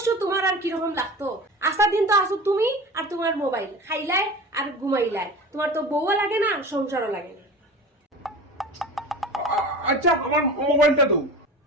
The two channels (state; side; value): normal; both; correlation 0.34